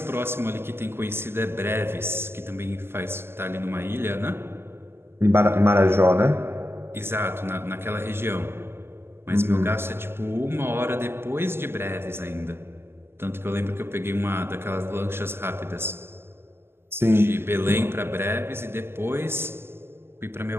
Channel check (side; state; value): left; late; 0.12 ms